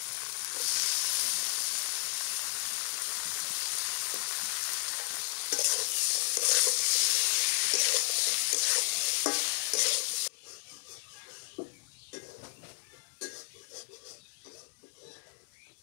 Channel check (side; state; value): right; silent; digital silence